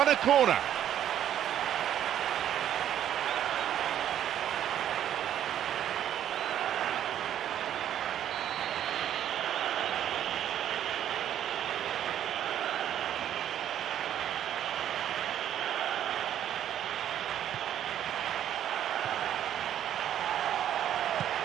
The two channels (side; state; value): left; quieter; 10.7 dB